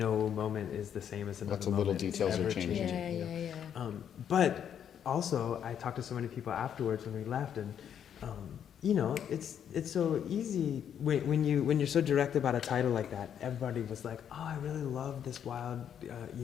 moment is the same as another Lots of moment. little details It's are ever changing. changing. But also, I talked to so many people afterwards when we left, and you know, it's so easy when you're so direct about a title like that. Everybody was like, "Oh, I really love this wild,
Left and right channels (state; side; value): quieter; right; 8.9 dB